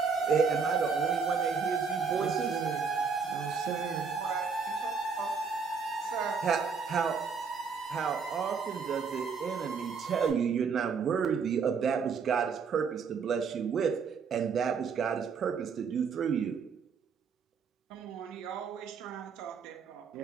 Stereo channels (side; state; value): left; quieter; 5.7 dB